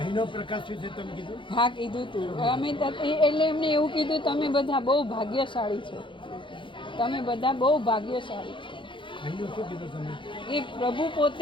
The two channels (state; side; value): late; right; 0.24 ms